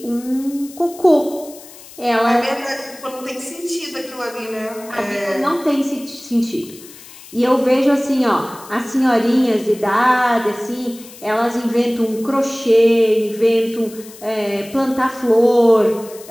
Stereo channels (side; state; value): left; noise; hiss, 19 dB below the sound